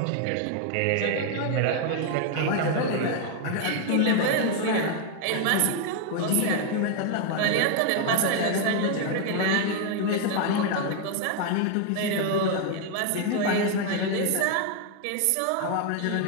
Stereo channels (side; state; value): both; different; correlation 0.01